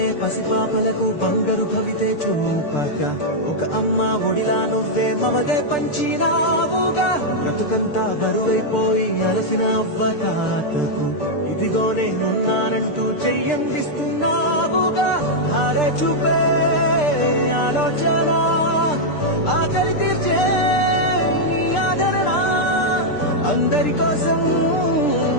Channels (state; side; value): late; right; 6.7 ms